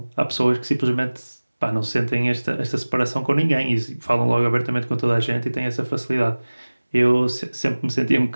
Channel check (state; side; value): inverted; both; correlation -1.00